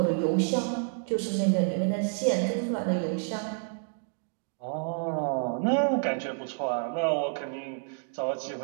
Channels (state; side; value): silent; left; 58 dB below the other